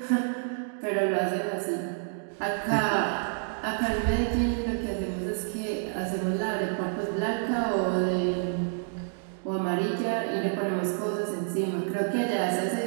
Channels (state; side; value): silent; left; digital silence